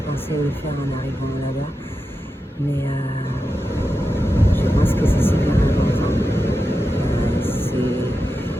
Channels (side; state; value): both; normal; correlation 0.90